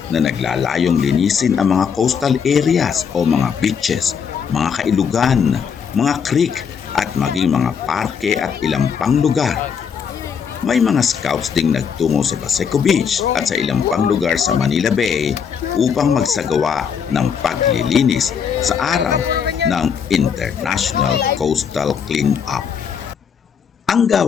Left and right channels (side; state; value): right; quieter; 6.9 dB